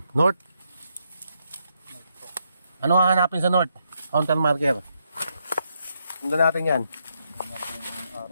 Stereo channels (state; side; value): inverted; both; correlation -0.79